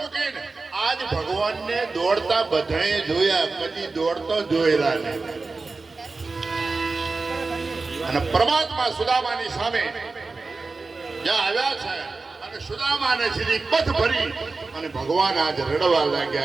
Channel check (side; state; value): left; quieter; 3.9 dB